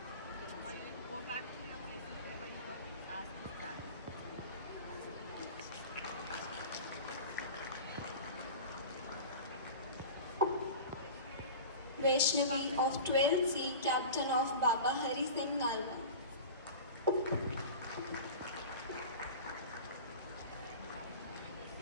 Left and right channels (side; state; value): both; inverted; correlation -0.34